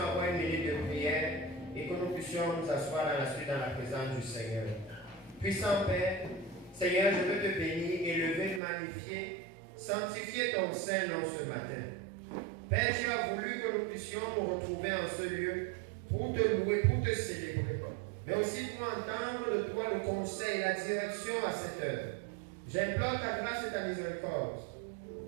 une minute de prière et que nous puissions nous asseoir dans la suite dans la présence du Seigneur. Puissant Père, Seigneur, je veux te bénir, élever, magnifier, sanctifier ton Saint-Nom ce matin. Père, tu as voulu que nous puissions nous retrouver en ce lieu pour te louer, pour te célébrer, mais aussi pour entendre de toi le conseil, la direction à cette heure. J'implore ta grâce et ta miséricorde,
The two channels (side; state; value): left; drops out; at 8.6 s